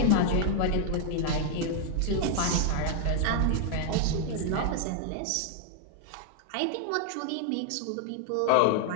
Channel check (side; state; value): both; different; correlation 0.00